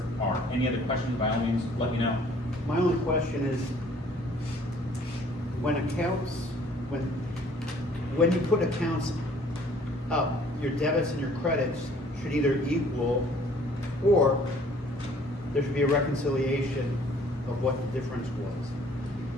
are any other questions, by all means, let me know. My only question is, when you put accounts up, your debits and your credits should either equal, or there should be a reconciliation of what the difference was.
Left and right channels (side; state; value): both; normal; correlation 0.57